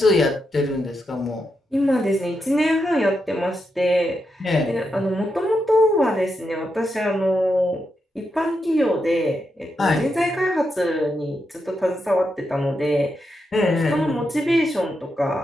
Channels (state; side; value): normal; both; correlation 0.85